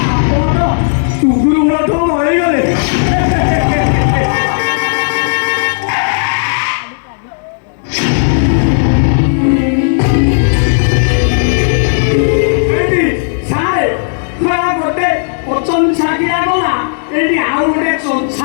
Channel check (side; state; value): right; silent; digital silence